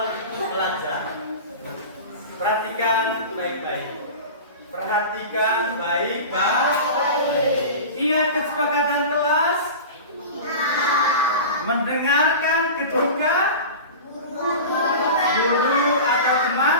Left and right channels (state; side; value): inverted; both; correlation -0.32